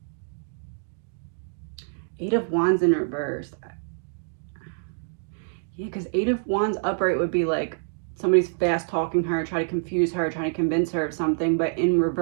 Eight of Wands in reverse. Yeah, because Eight of Wands upright would be like somebody's fast talking her, try to confuse her, trying to convince her of something. But in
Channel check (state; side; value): silent; left; digital silence